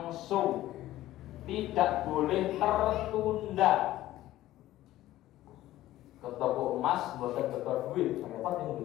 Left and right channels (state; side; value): quieter; right; 14.9 dB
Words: tidak boleh tertunda. Ke toko emas bukan betul duit, apa